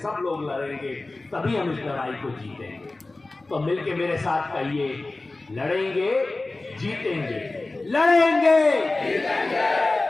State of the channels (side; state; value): right; quieter; 3.2 dB